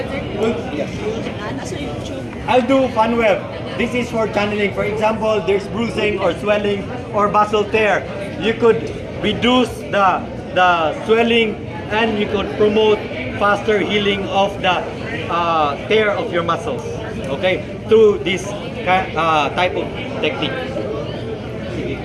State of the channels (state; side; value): identical; both; correlation 1.00